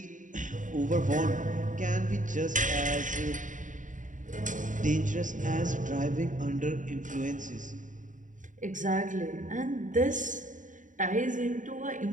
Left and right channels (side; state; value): left; late; 0.37 ms